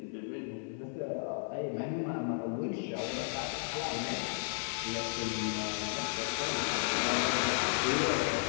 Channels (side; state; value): right; silent; 55 dB below the other